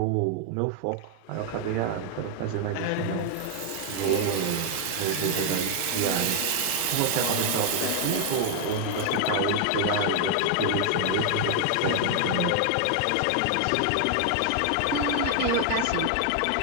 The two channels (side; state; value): both; different; correlation 0.00